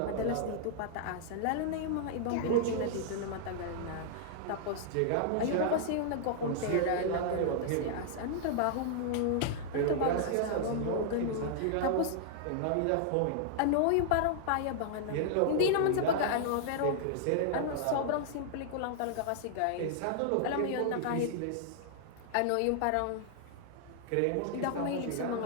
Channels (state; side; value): different; both; correlation -0.01